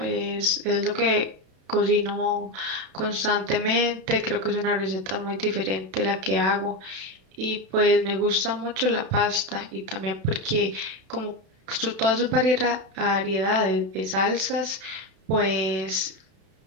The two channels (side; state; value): left; late; 32 ms